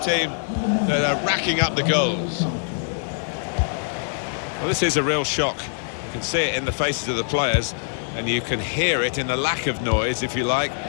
that are racking up the goals. Well, this is a real shock. You can see it in the faces of the players, and you can hear it in the lack of noise, if you like,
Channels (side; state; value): right; silent; digital silence